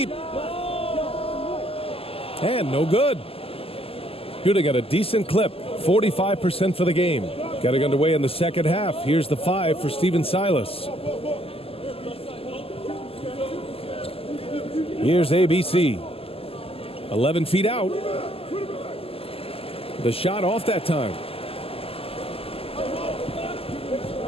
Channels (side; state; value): right; late; 0.28 ms